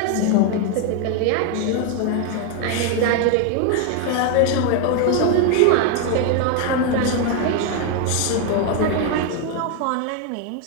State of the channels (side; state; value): both; different; correlation 0.01